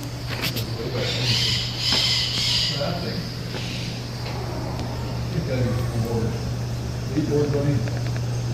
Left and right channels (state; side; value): identical; both; correlation 1.00